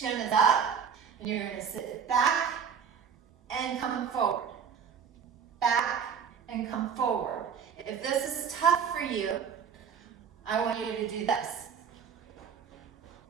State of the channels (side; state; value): left; quieter; 7.0 dB